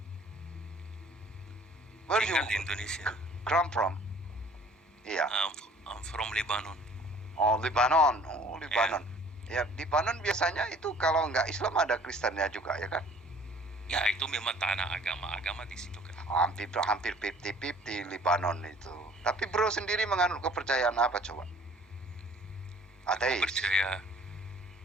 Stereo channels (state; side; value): normal; both; correlation 0.53